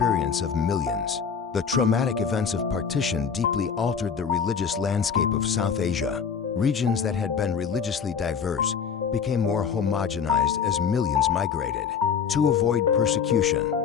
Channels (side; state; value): right; quieter; 6.7 dB